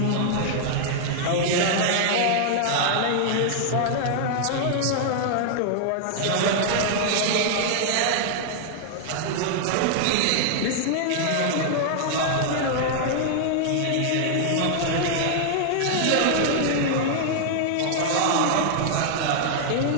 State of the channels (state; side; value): different; both; correlation -0.01